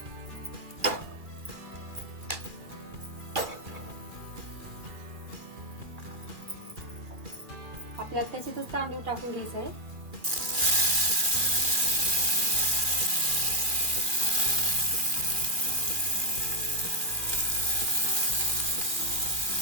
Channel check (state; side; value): late; left; 2.4 ms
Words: आपल्याला त्याच्यातच तांदूळ टाकून घ्यायचं आहे.